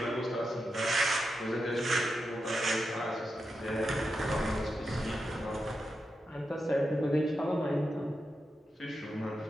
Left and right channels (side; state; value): both; normal; correlation 0.88